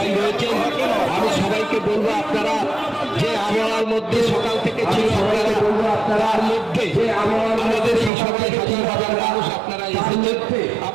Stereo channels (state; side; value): drops out; left; at 8.1 s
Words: রয়েছেন। আমি সবাইকে বলবো আপনারা যে আবহাওয়ার মধ্যে সকাল থেকে ছিল, আপনারা তার মধ্যে আমাদের এই সবাই হাজার হাজার মানুষ আপনারা এসেছেন,